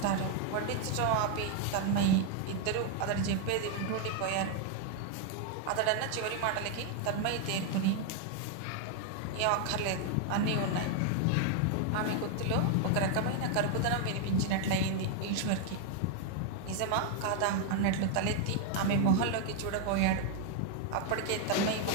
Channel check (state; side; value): different; both; correlation 0.00